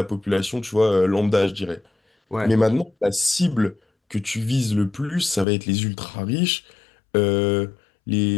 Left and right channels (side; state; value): right; drops out; at 5.5 s